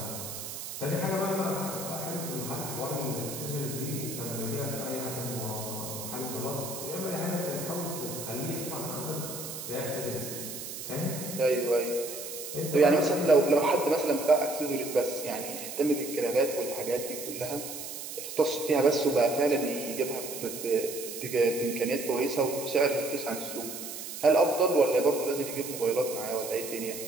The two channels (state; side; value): noise; right; hiss, 8 dB below the sound